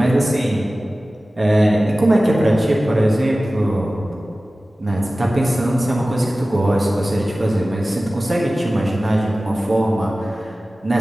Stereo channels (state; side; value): normal; both; correlation 0.97